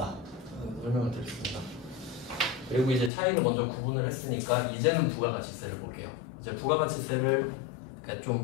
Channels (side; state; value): right; drops out; at 3.1 s